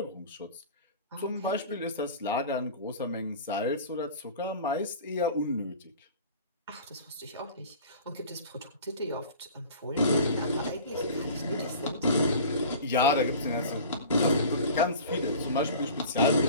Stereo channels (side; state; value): both; inverted; correlation -0.41